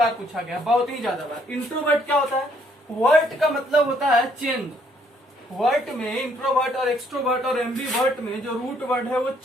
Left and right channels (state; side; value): normal; both; correlation 0.67